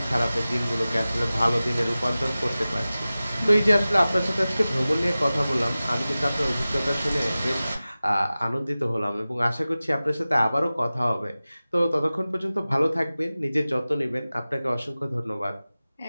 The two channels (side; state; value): both; inverted; correlation -0.96